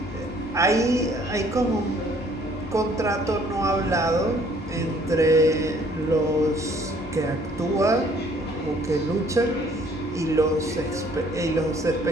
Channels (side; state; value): both; normal; correlation 0.60